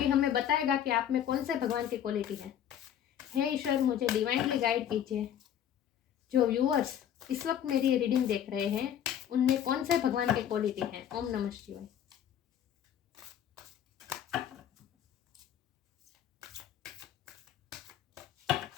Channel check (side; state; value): right; quieter; 9.9 dB